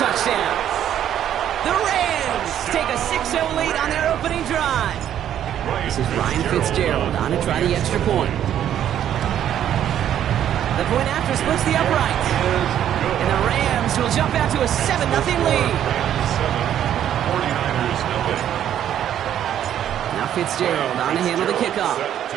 The Rams take a 6-0 lead on their opening drive. This is Ryan Fitzgerald on to try the extra point. The point after splits the uprights. And the Rams will jump out to a 7-0 lead. Now Fitzgerald on to handle the kickoff.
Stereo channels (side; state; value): left; quieter; 10.5 dB